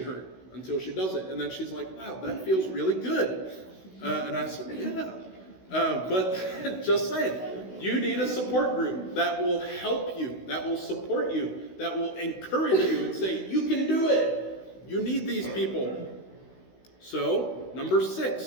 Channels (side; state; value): right; late; 16 ms